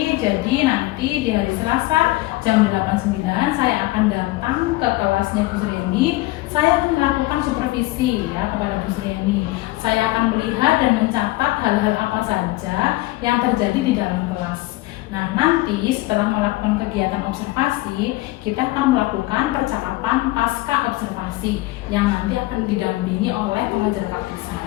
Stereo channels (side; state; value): right; quieter; 19.5 dB